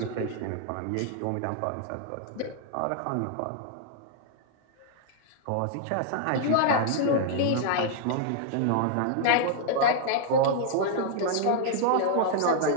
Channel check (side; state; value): both; different; correlation -0.01